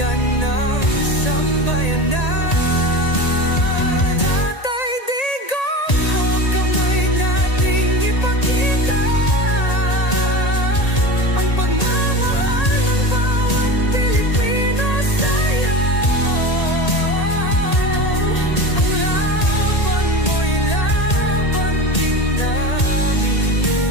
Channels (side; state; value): right; late; 1.8 ms